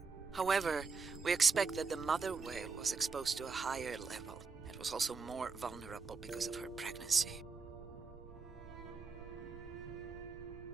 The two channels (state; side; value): quieter; left; 4.8 dB